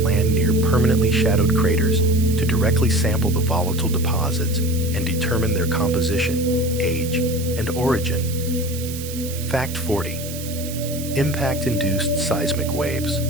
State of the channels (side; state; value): right; noise; hiss, 11 dB below the sound